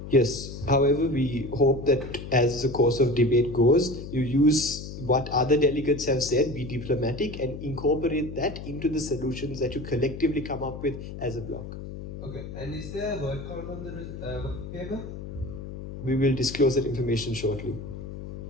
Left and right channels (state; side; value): noise; left; hum, 10 dB below the sound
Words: Yes. However, we hope that as the course of debate goes, you use what other delegates have said, be diplomatic, and incorporate that into the solutions that you collectively come up with as a block. Okay. And is there a word count on the working paper? We will disclose that information shortly.